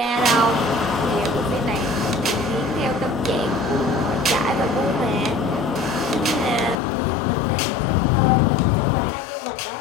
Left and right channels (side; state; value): right; drops out; at 6.8 s